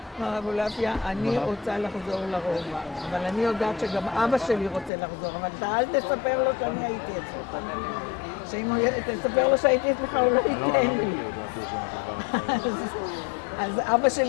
מר אבולעפיה, אני רוצה לחזור לרובע, אבל אני יודעת שגם אבא שלי רוצה לחזור, אבל אתה אל תספר לו שאני הייתי אצלך. שאם תספר לו שהייתי אצלך, הוא לא ייתן לי. אז אבא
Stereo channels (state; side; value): drops out; right; at 4.9 s